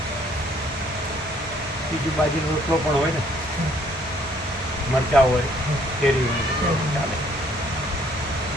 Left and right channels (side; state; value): both; normal; correlation 0.63